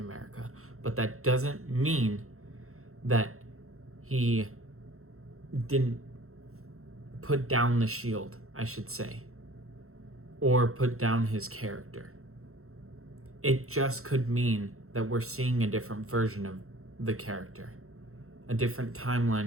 But that doesn't mean that he didn't put down the shield, I should say, or put down his character. It just could mean that we're seeing a different version of the character, a different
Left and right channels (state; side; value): late; left; 0.63 ms